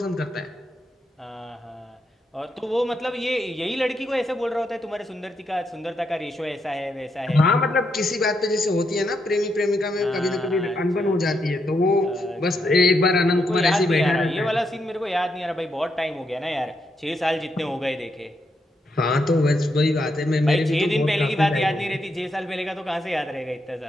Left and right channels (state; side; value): normal; both; correlation 0.80